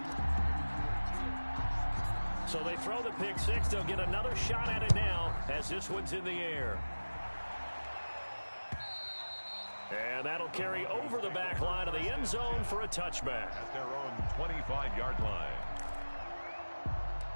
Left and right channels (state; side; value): inverted; both; correlation -1.00